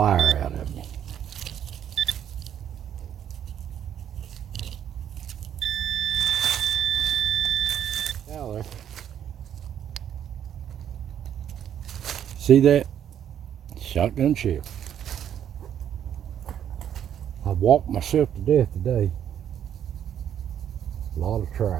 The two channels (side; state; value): left; quieter; 9.7 dB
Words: out of me. Now there. See that? Shotgun shell. I walked myself to death today. A lot of